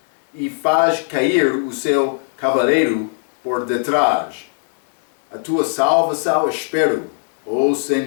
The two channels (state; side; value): silent; right; digital silence